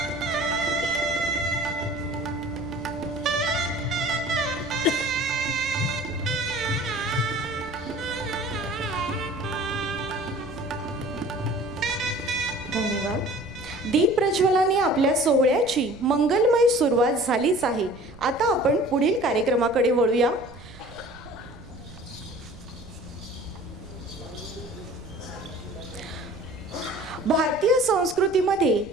धन्यवाद. दीप प्रज्वलाने आपल्या सोहळ्याची मंगलमय सुरुवात झालीच आहे. आता आपण पुढील कार्यक्रमाकडे वळूया. भारतीय संस्कृतीमध्ये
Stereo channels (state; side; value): noise; right; rumble, 19 dB below the sound